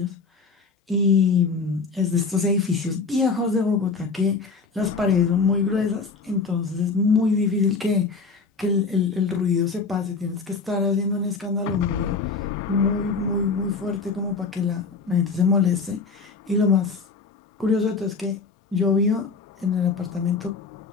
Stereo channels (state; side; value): quieter; right; 4.5 dB